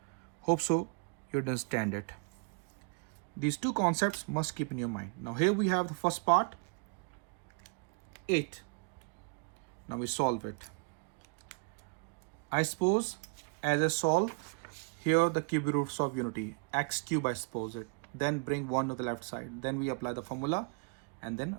Hope so you understand it. These two concepts must keep in your mind. Now here we have the first part, 8. Now we solve it. I suppose as I solve, here the cube roots of unity, x cube I suppose it. Then bring 1 to the left side. Then we apply the formula and then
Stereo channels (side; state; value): left; quieter; 35.5 dB